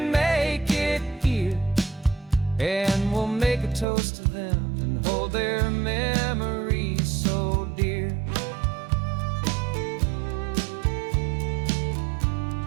make it here, and we'll make a toast to them and hold their memories so dear.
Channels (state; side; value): drops out; left; at 3.9 s